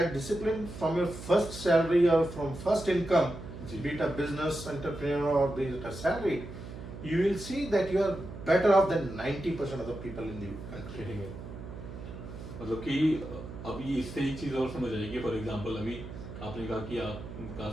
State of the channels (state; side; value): noise; right; hum, 11 dB below the sound